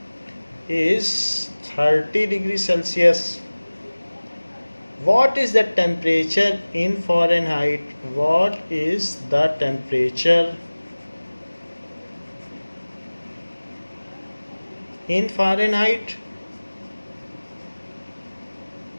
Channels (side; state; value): both; inverted; correlation -1.00